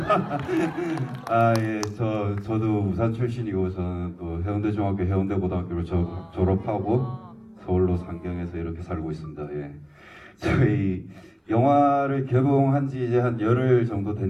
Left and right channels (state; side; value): identical; both; correlation 1.00